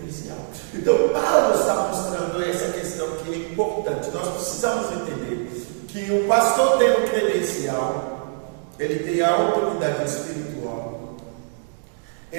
Então Paulo está mostrando essa questão que é importante. Nós precisamos entender que o pastor tem um credencial, ele tem a autoridade espiritual,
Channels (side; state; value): left; silent; digital silence